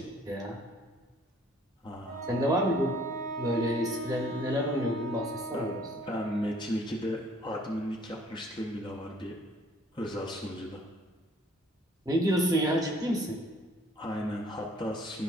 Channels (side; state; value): both; normal; correlation 0.58